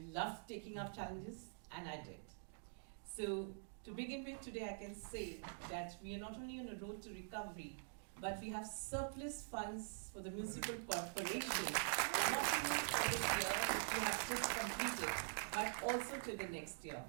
loved taking up challenges, and I did. So, to begin with, today I can say that we are not only on a road to recovery, but we have surplus funds for the municipal corporation, not only for this year, which we have just completed, but also to the next year.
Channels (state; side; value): silent; left; digital silence